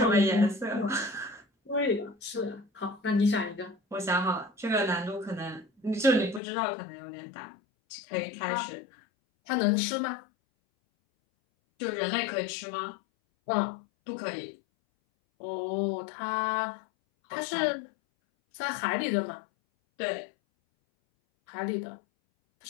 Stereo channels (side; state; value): right; drops out; at 6.4 s